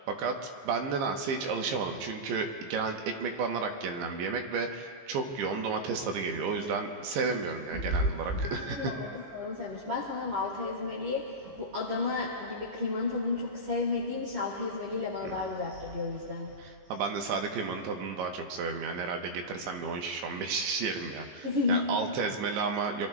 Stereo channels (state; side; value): late; left; 15 ms